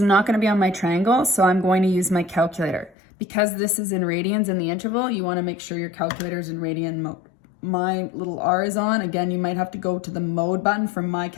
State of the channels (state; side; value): drops out; right; at 3.0 s